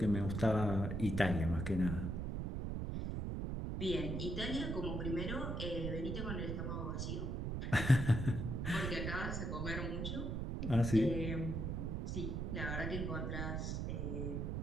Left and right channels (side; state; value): right; noise; rumble, 2 dB below the sound